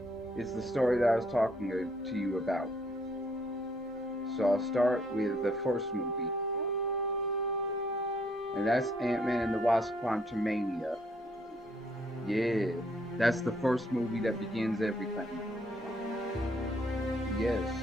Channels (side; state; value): both; normal; correlation 0.68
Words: it's the story that I was talking to you about. So I'll start with the first movie, and that's Ant-Man and the Wasp: Quantumania. Yeah, that's the first movie that begins everything. Yes.